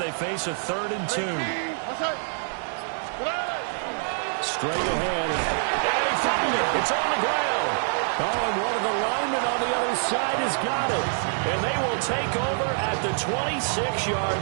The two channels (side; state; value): left; silent; 61 dB below the other